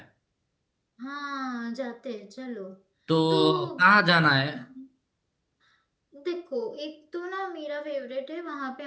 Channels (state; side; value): identical; both; correlation 1.00